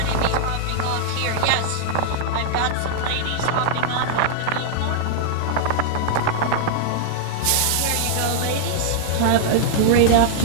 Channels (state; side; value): different; both; correlation -0.01